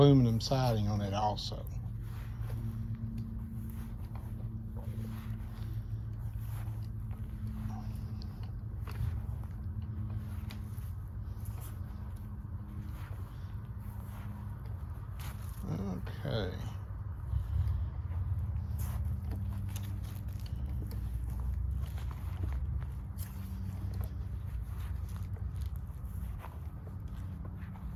siding on it also. Okay.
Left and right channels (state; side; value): identical; both; correlation 1.00